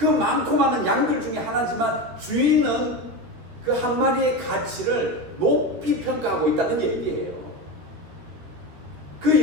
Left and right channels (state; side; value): late; left; 13 ms